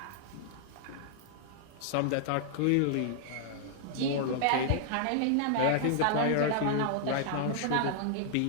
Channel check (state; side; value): different; both; correlation -0.01